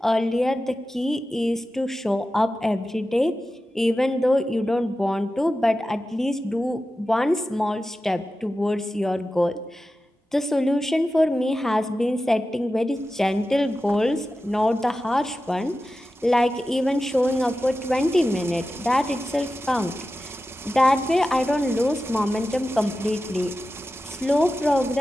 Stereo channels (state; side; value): normal; both; correlation 0.93